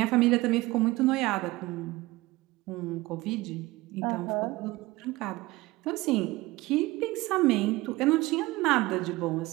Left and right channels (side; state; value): left; quieter; 20.1 dB